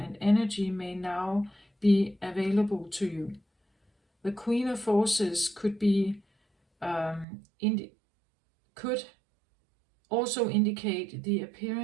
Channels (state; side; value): drops out; left; at 7.2 s